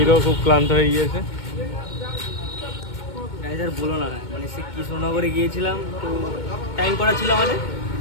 খুব ক্লান্ত হয়ে গিয়েছে। আর বলো না, মানে সে কৃষ্ণনগরে গিয়েছিলাম, তো টাইম করা ছিল আমাদের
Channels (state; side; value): late; right; 2.2 ms